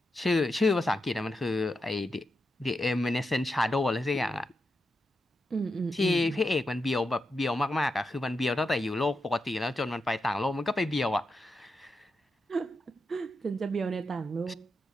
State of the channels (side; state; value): both; normal; correlation 0.86